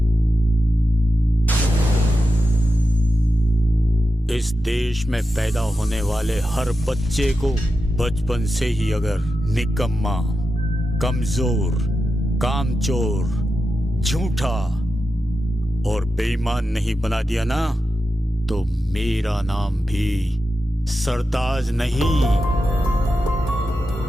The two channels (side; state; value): both; normal; correlation 0.91